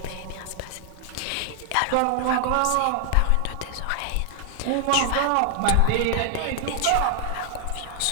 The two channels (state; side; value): different; both; correlation 0.00